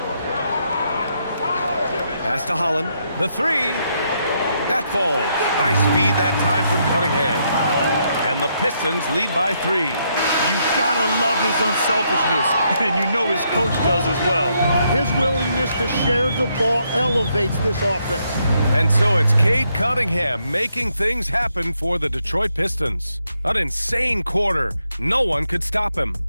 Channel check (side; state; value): both; inverted; correlation -0.77